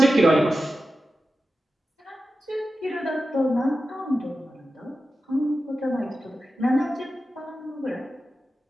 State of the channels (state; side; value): normal; both; correlation 0.92